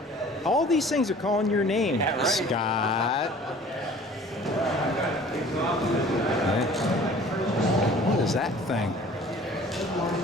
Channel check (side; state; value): both; normal; correlation 0.49